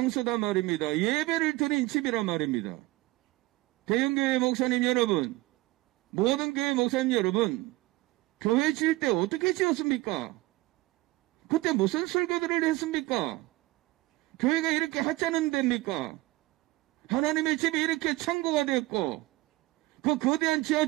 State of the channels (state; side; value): quieter; left; 19.7 dB